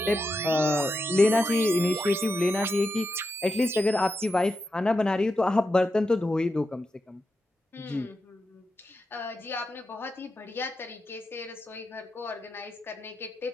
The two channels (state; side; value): normal; both; correlation 0.87